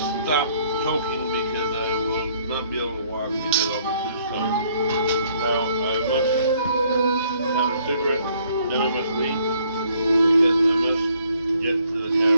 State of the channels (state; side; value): inverted; both; correlation -0.65